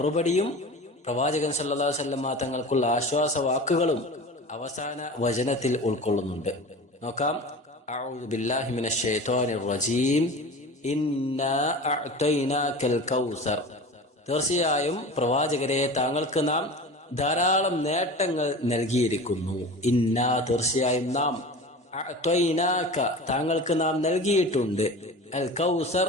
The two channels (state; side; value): normal; both; correlation 0.34